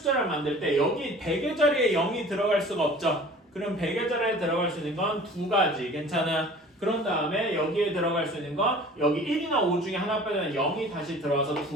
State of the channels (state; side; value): normal; both; correlation 0.45